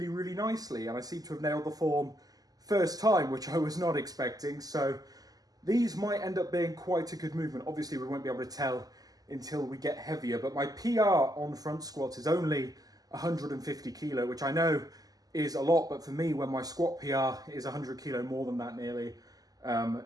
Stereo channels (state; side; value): late; left; 0.18 ms